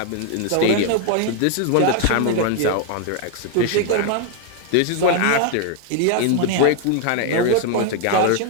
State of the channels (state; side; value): different; both; correlation 0.01